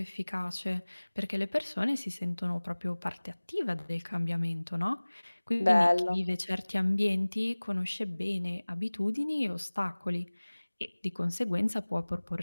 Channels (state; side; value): inverted; both; correlation -1.00